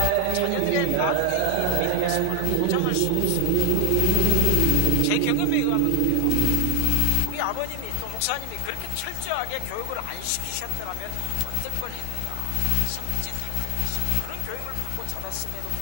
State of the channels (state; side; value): different; both; correlation 0.00